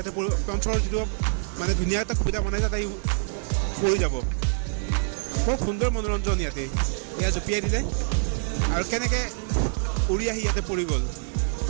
পঞ্চৰ যিটো মানে ধুনীয়া এটা সুবিধা বনাইছে তাই পৰি যাব। বৰ সুন্দৰ মনোৰঞ্জন ইয়াতে। এয়া জঁপিয়াই দিলে আৰু কেনেকৈ উৰি আহি ইয়াতে পৰি গ'ল।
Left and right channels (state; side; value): silent; left; 61 dB below the other